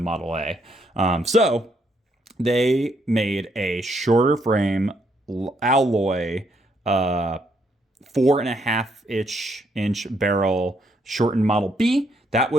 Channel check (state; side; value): normal; both; correlation 0.73